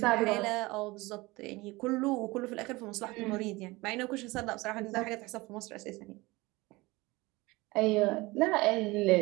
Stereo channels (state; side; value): quieter; left; 22.0 dB